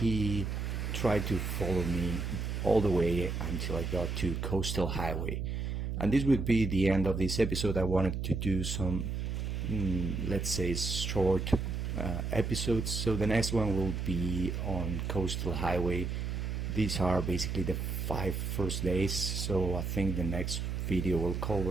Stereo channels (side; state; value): right; noise; hum, 2 dB below the sound